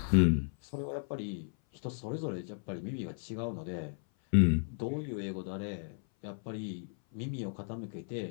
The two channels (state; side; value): silent; right; 55 dB below the other